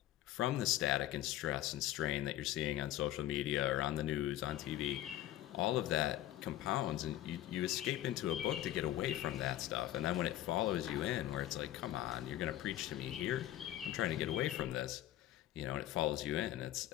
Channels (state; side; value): quieter; right; 13.6 dB